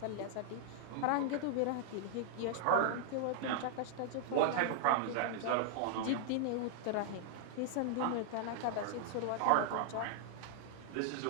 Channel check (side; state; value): both; different; correlation -0.01